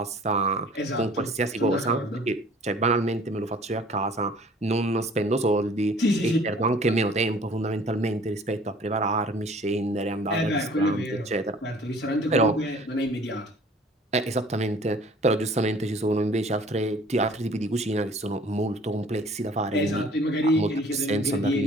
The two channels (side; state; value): both; normal; correlation 0.51